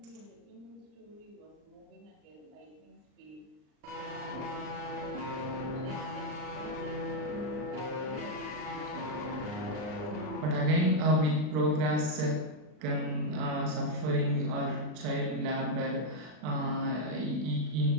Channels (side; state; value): left; late; 39 ms